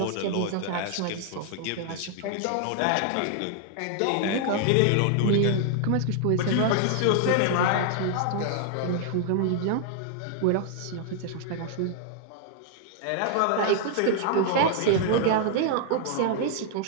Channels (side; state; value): both; different; correlation 0.00